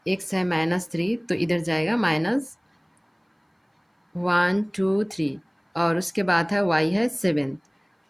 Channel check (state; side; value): identical; both; correlation 1.00